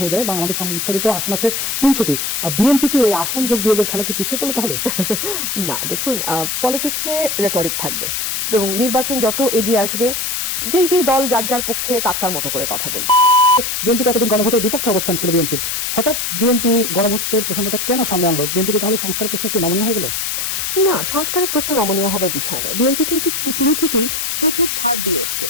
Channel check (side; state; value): left; noise; hiss, 1 dB below the sound